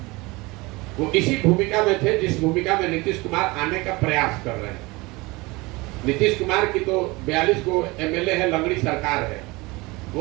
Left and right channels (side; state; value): left; quieter; 23.3 dB